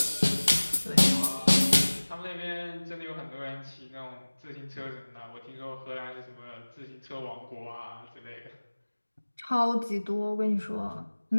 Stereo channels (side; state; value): both; inverted; correlation -1.00